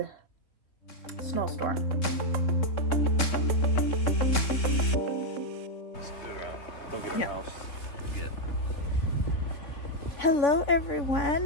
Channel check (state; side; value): late; right; 3.7 ms